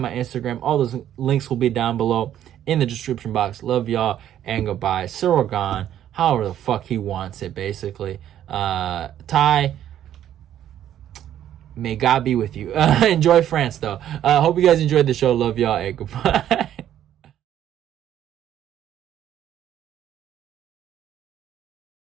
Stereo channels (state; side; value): quieter; left; 11.1 dB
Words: my Instagram. All those links will be down below in the description box. Love y'all and goodbye. Ciryl Gane, however the fuck he wants it, basically. Tai, may God be with you. Enjoy France, though. Hope you guys enjoyed the show. Love y'all and goodbye.